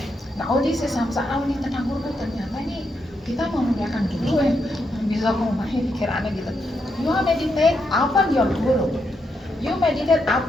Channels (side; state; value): both; normal; correlation 0.81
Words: Nah, this is samsara ini tentang guru ternyata ini kita mau memuliakan guru bisa memahami pikirannya gitu. You meditate upon your guru. You meditate